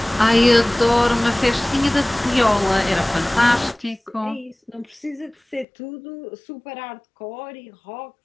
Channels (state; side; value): drops out; right; at 5.7 s